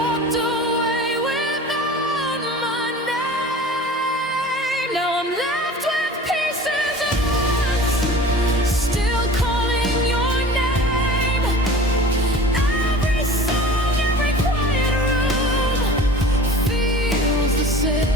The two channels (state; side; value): normal; both; correlation 0.40